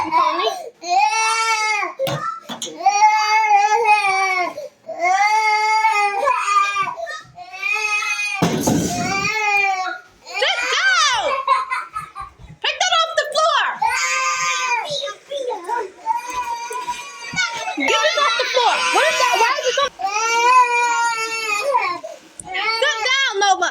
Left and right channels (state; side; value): identical; both; correlation 1.00